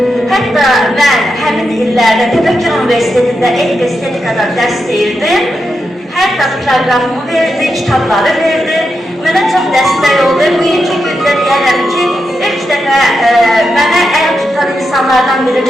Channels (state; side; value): normal; both; correlation 0.86